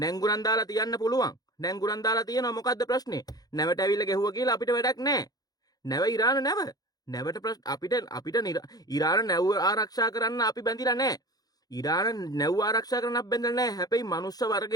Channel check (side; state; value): right; late; 0.19 ms